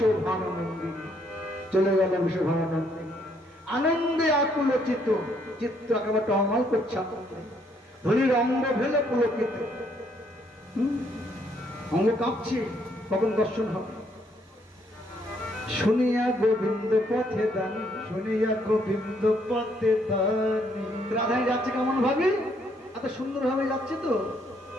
চলে গেল বিশ্বভানন্দী। আনন্দে আকুল চিত্ত, চিত্ত একেবারে টলমল করছে। ধনির অঙ্গ ভেলে পুলকিত, অঙ্গ কাঁপছে, কখন দর্শন হবে। শুনিয়া গোবিন্দ পথে দানি, শুনিয়া গোবিন্দ পথে দানি। রাধাই যাচ্ছে কেমন ভাবে, এত সুন্দর ভাবে যাচ্ছে তো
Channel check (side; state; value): both; normal; correlation 0.70